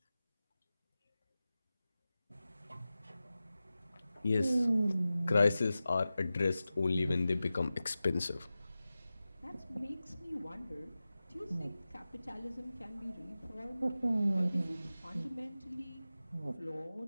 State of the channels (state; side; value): inverted; both; correlation -0.95